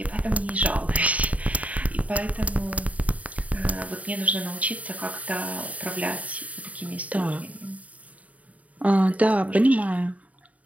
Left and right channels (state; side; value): late; left; 0.070 ms